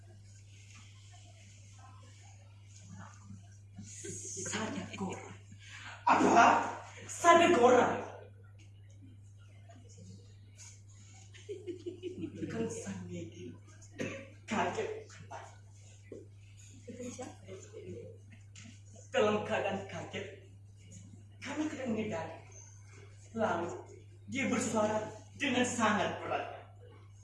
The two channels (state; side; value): identical; both; correlation 1.00